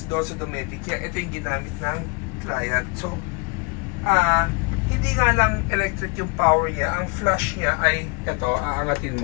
domestic. Kaya ito yung ginamit ng client. So, hindi nga lang electric yung power niya. Ang flush niya ay ito, aangatin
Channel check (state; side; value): quieter; right; 30.9 dB